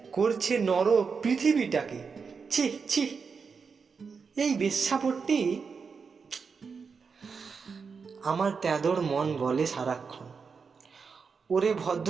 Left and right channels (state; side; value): quieter; left; 5.4 dB